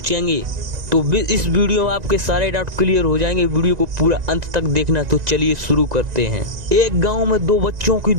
तो इस वीडियो में आपके सारे डाउट क्लियर हो जाएंगे। वीडियो को पूरा अंत तक देखना। तो चलिए शुरू करते हैं। एक गांव में दो बच्चों की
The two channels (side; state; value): left; late; 1.9 ms